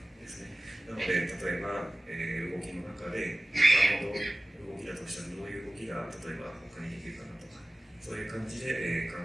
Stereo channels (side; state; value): both; normal; correlation 0.96